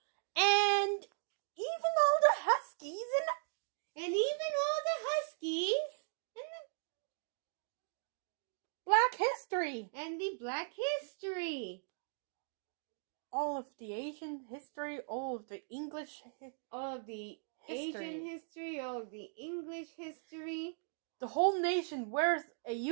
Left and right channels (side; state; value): left; silent; digital silence